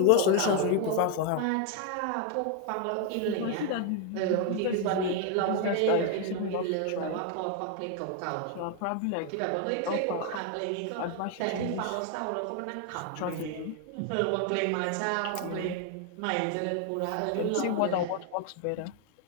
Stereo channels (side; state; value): both; different; correlation 0.01